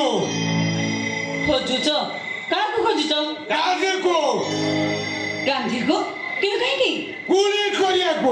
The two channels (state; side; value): identical; both; correlation 1.00